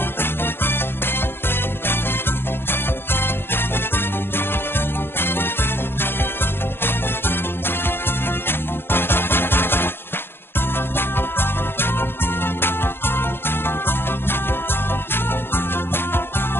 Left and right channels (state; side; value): late; right; 0.11 ms